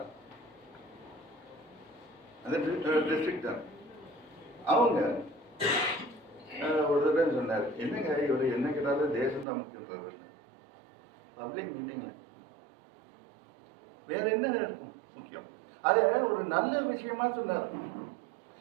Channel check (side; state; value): left; drops out; at 9.5 s